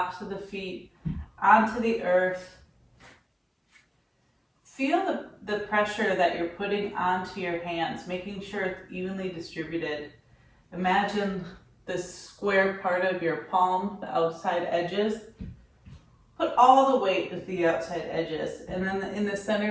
of the feet onto the earth. Feel the pressure that you're putting onto your hands, making sure it's evenly distributed. Imagine the square part of your palm, the outside edges. Put all the weight at the outside edges, and then in the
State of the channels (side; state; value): both; identical; correlation 1.00